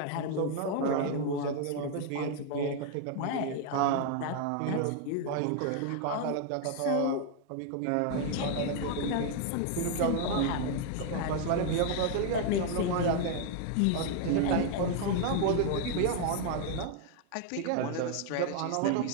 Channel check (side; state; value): both; different; correlation 0.00